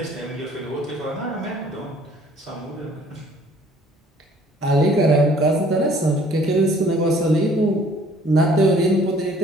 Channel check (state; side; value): normal; both; correlation 0.57